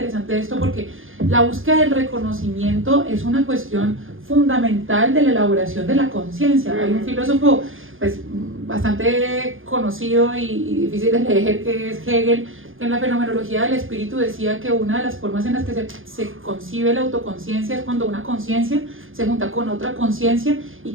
esto porque la búsqueda del reconocimiento es una cuestión fundamental de la elaboración de la conciencia. Hay un filósofo pues bastante conocido y difícil de leer que es Hegel, que en la fenomenología del espíritu decía que una de las formas en las que se concibe la autoconciencia es cuando una conciencia se junta con otra conciencia y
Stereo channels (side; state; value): left; late; 0.59 ms